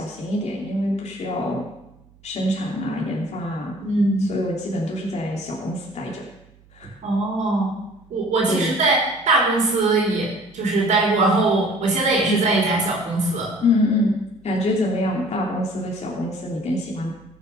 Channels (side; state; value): right; noise; hum, 28 dB below the sound